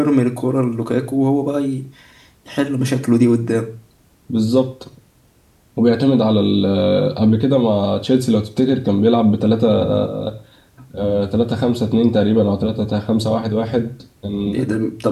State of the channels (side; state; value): both; identical; correlation 1.00